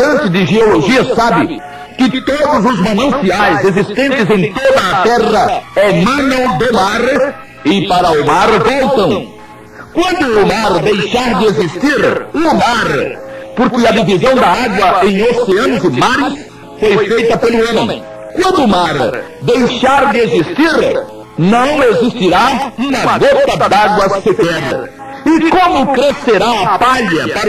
de geologia sabe que todos os mananciais existentes em toda a terra emanam do mar e para o mar voltam. Quando o mar deixar de existir, o mar, porque a divisão da água em oceanos e mares foi feita pelo homem. Quando o mar deixar de existir, não existirá uma gota d'água sequer. E como crescerá a palha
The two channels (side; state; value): both; identical; correlation 1.00